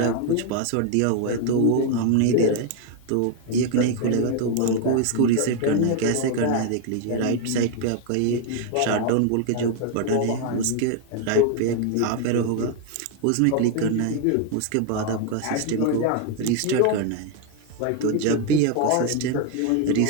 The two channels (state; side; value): different; both; correlation 0.01